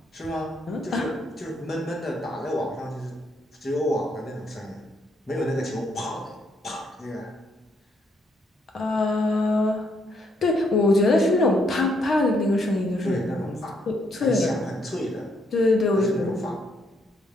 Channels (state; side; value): normal; both; correlation 0.73